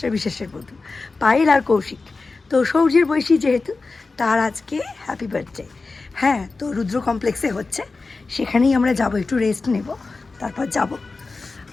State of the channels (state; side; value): quieter; right; 3.9 dB